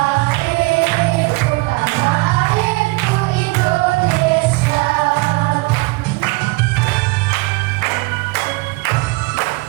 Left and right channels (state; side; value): quieter; left; 24.8 dB